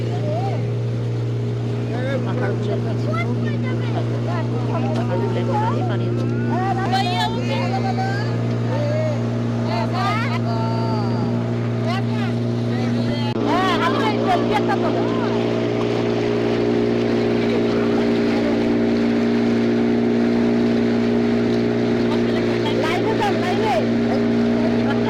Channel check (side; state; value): both; identical; correlation 1.00